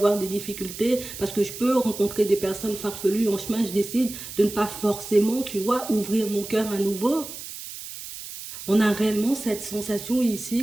des difficultés, parce que je peux rencontrer des personnes farfelues en chemin, je décide de ne pas forcément, tu vois, ouvrir mon cœur à nouveau. On a réellement cette sensation ici,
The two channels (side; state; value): right; noise; hiss, 11 dB below the sound